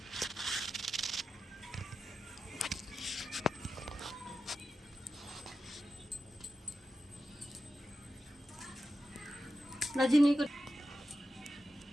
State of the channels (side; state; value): both; normal; correlation 0.91